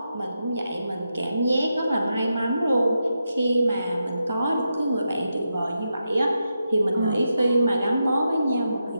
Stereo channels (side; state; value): both; inverted; correlation -0.86